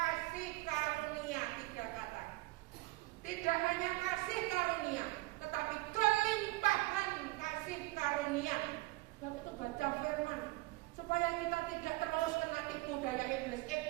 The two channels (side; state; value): left; quieter; 22.0 dB